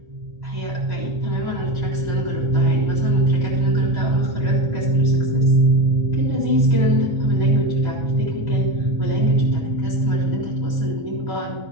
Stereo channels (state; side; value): late; left; 1.4 ms